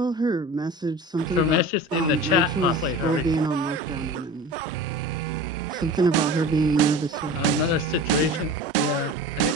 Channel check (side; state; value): both; normal; correlation 0.36